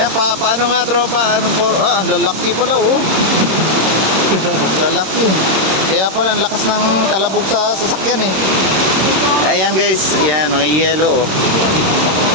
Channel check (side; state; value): left; late; 26 ms